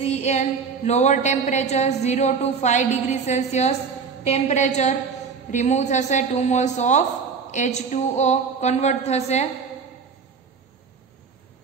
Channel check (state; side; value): quieter; left; 5.6 dB